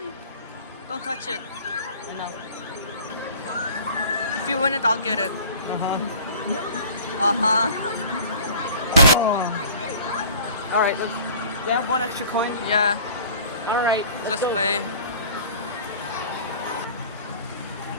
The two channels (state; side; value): inverted; both; correlation -0.46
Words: Don't touch it. I know. If you win it, I'll get it. Uh-huh. Oh. All right, let's. Do you have one extra coin? Yeah, All right, let's play.